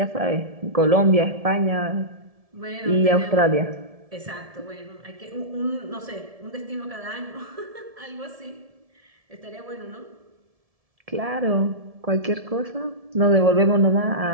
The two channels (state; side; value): late; left; 1.7 ms